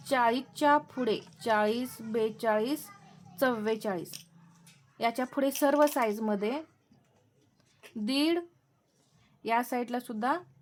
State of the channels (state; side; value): identical; both; correlation 1.00